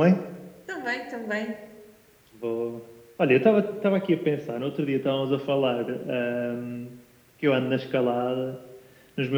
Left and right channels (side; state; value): both; identical; correlation 1.00